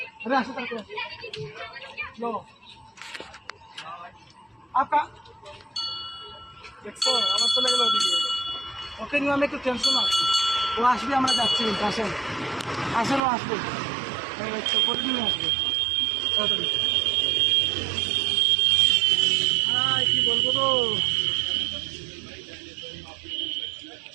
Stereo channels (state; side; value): drops out; left; at 13.2 s